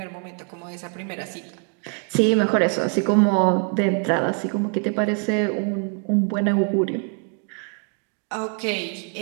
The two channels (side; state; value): left; quieter; 36.7 dB